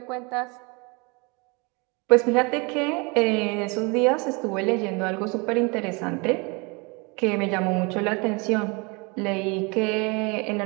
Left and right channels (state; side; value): quieter; left; 29.2 dB